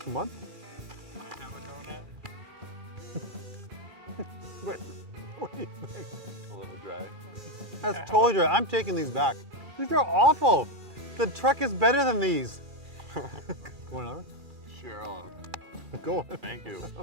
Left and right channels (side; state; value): left; late; 2.4 ms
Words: month? Can I have a donut? What do you think? A little dry. That's totally dry. I'm taking these back. These are awful. The truck is better than these. One other? Sure. Go on. Thank you.